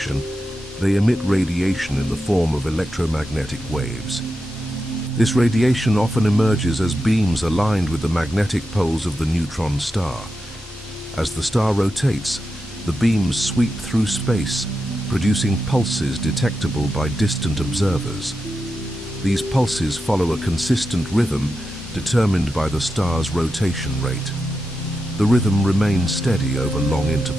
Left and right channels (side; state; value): both; normal; correlation 0.89